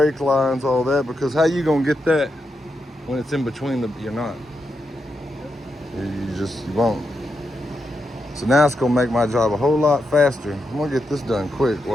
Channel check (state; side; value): normal; both; correlation 0.85